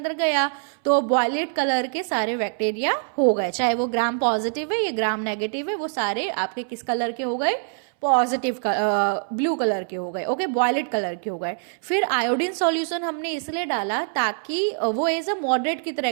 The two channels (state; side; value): silent; left; 63 dB below the other